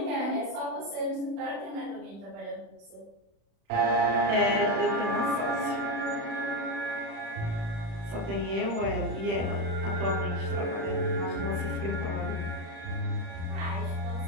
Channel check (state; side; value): late; left; 36 ms